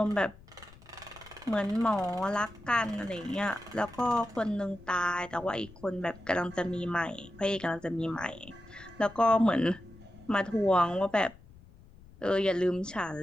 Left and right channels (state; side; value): noise; left; rumble, 22 dB below the sound